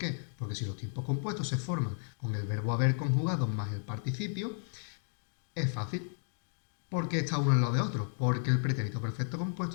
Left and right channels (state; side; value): silent; right; digital silence